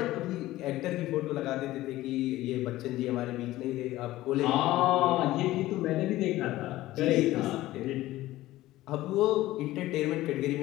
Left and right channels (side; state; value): right; quieter; 16.3 dB